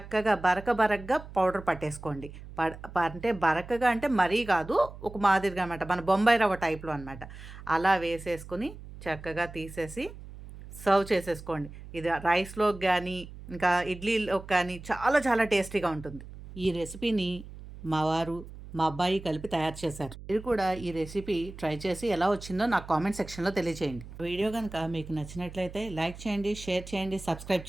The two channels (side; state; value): right; noise; hum, 15 dB below the sound